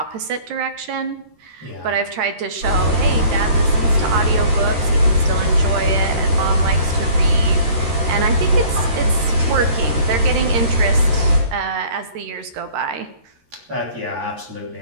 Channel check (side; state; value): left; late; 13 ms